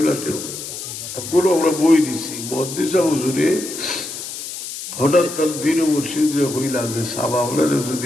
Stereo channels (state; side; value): noise; left; hiss, 9 dB below the sound